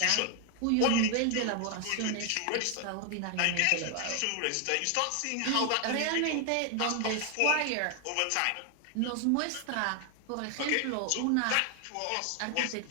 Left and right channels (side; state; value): both; different; correlation 0.00